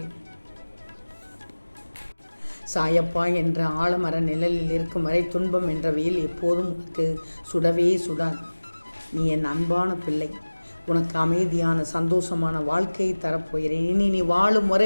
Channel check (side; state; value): both; inverted; correlation -1.00